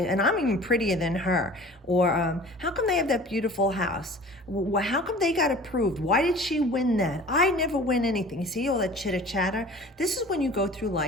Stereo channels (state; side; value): normal; both; correlation 0.44